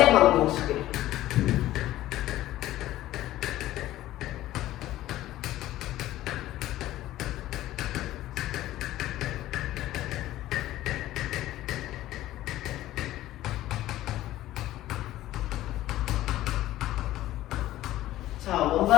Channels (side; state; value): right; quieter; 14.8 dB